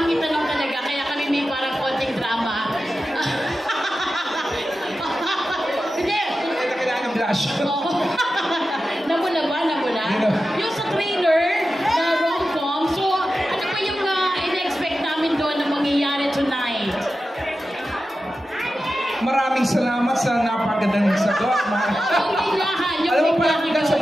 itanong talaga, kaya kami may parang konting drama. Hindi. Ito kailangan ng blush. Namuna ba? Namuna? Yung sa trailer na rom-com, so ano ba yung in-expect namin doon na mangyayari tonight? Maraming salamat sa napakagandang sagot. Yung biglahan, yung Alam mo pala, biglahan that's a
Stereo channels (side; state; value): both; normal; correlation 0.92